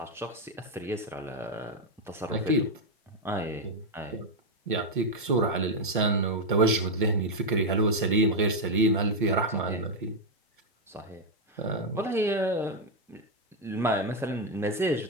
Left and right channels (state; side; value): normal; both; correlation 0.02